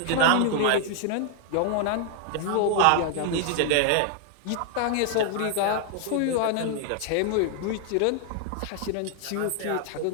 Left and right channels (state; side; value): different; both; correlation 0.00